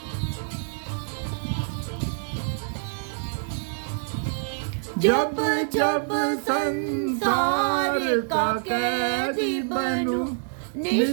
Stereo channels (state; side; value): silent; left; digital silence